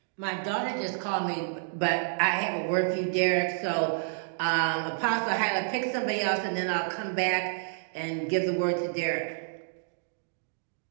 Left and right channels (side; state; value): left; silent; digital silence